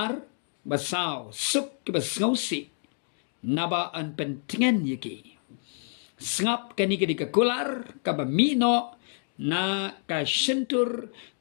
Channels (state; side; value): silent; right; 59 dB below the other